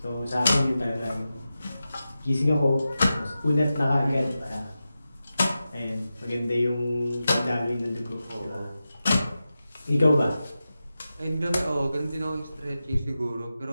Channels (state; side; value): inverted; both; correlation -0.92